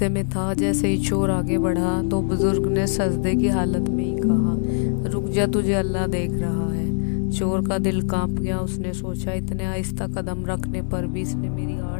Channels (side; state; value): right; silent; 60 dB below the other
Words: में था। जैसे ही चोर आगे बढ़ा तो बुजुर्ग ने सजदे की हालत में ही कहा, रुक जा, तुझे अल्लाह देख रहा है। चोर का दिल कांप गया। उसने सोचा, इतने आहिस्ता कदम रखने पर भी इसने मेरी